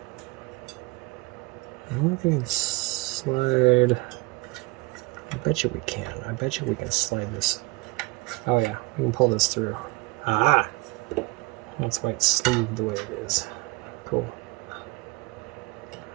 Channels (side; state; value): left; quieter; 23.7 dB